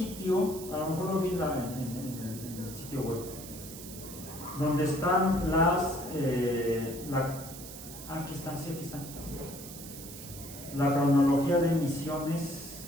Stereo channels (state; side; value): noise; right; hiss, 13 dB below the sound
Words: a lo mejor lo vi en el sitio web, donde están aquí están, sí, aquí están. La cronología de misiones